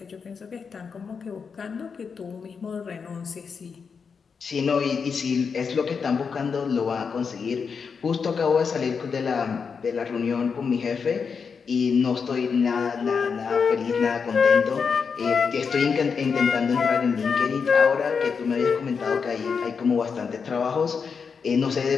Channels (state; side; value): quieter; right; 5.8 dB